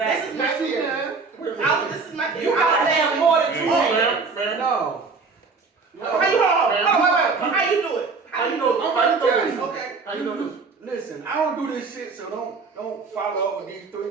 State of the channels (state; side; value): quieter; left; 4.5 dB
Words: is my theory. This is my theory. You gotta have more than two hands. man. No. How you hold on, wait. How you do it? How you know? How you know this? Okay. How you know this? Listen, I don't do this shit, so don't follow up with these three